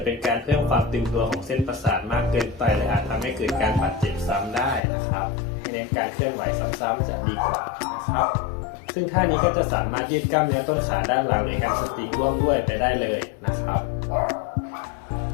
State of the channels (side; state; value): right; drops out; at 4.8 s